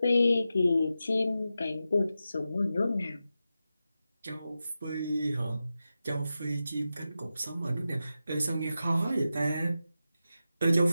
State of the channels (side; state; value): both; inverted; correlation -0.91